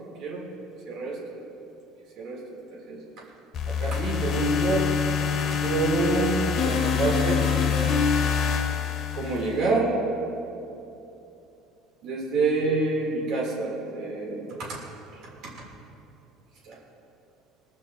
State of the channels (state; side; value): normal; both; correlation 0.51